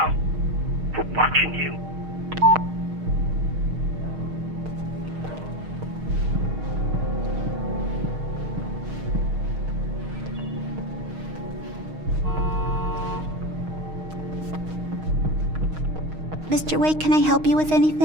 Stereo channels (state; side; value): late; left; 6.4 ms